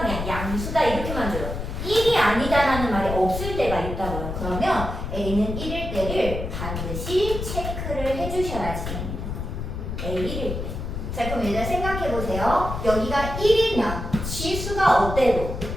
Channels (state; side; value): noise; left; rumble, 5 dB below the sound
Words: 그냥 양수다 이렇게만 줘요. 1이 아니다라는 말이 없을 때가 있다고요. 그러면 A는 1일 때를 반드시 체크를 해주셔야지 됩니다. A 1일 때. 자, 그럼 일단 생각해보세요. 여기가 1이면 지수가 어때도